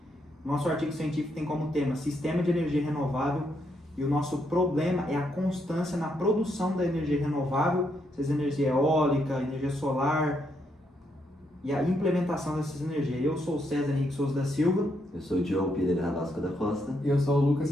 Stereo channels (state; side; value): normal; both; correlation 0.77